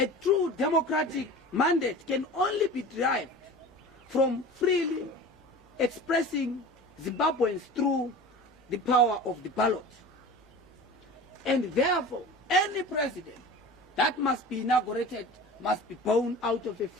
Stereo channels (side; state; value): both; normal; correlation 0.37